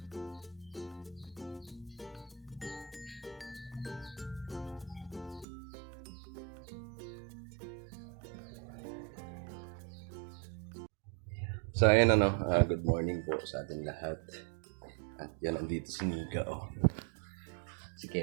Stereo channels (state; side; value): drops out; left; at 5.5 s